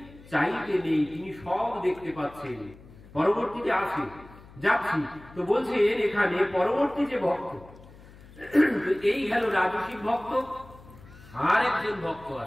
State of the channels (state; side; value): noise; left; hum, 21 dB below the sound